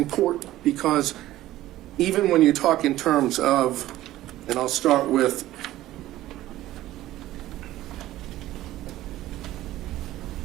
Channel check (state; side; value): quieter; left; 15.1 dB